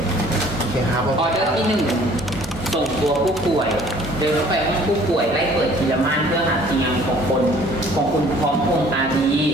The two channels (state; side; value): normal; both; correlation 0.54